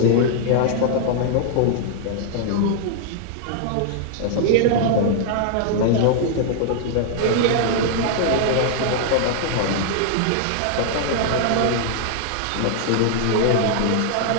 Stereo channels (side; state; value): both; different; correlation -0.01